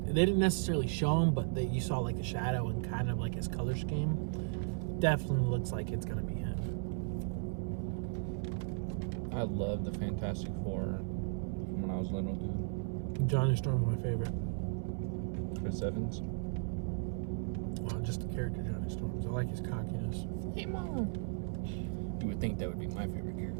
they didn't necessarily show him, but you saw like the shadow and kind of like his color scheme. Definitely looks like it's gonna be him. I love the Fantastic Four from when I was little, dude. Johnny Storm's my favorite. Chris Evans. Well, just the character Johnny Storms. I like his cockiness. Hey, Mom. You would think that would be my favorite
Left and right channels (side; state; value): left; silent; 54 dB below the other